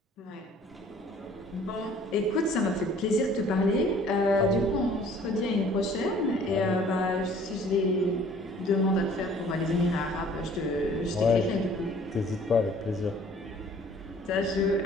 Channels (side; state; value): both; normal; correlation 0.54